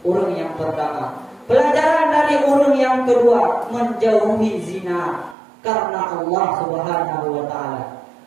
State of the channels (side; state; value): left; drops out; at 5.4 s